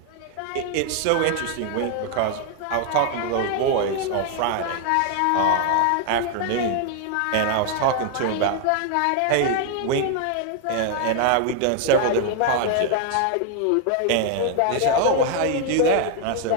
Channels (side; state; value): both; different; correlation 0.00